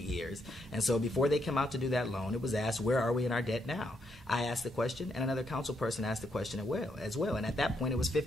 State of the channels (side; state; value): both; normal; correlation 0.77